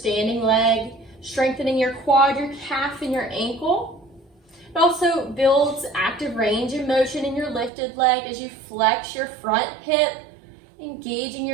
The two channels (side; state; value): left; drops out; at 7.7 s